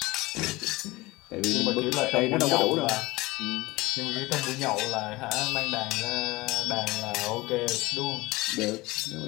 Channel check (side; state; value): right; quieter; 20.9 dB